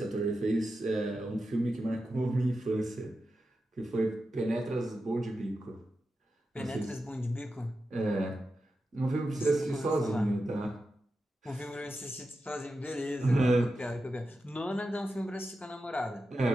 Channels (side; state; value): both; normal; correlation 0.90